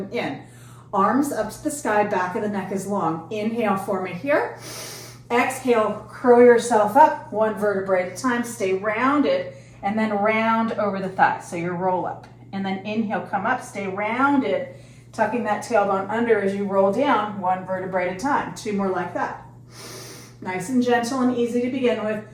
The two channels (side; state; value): both; identical; correlation 1.00